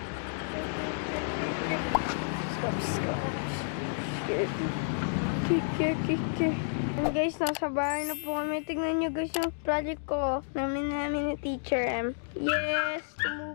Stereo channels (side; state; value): right; silent; digital silence